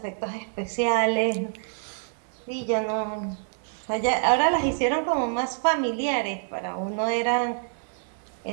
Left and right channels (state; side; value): silent; left; 60 dB below the other